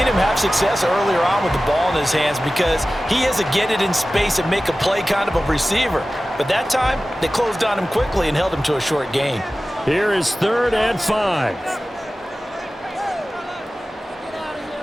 him have success earlier on with the ball in his hands because he is a get it in space and make a play kind of a receiver. But that time, they closed on him quickly and held him to a short gain. Here is 3rd and 5.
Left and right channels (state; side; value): normal; both; correlation 0.96